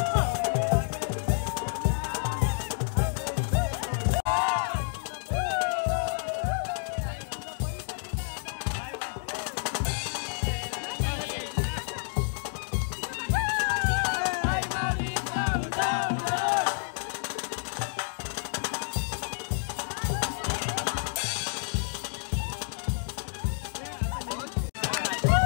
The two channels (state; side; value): silent; right; digital silence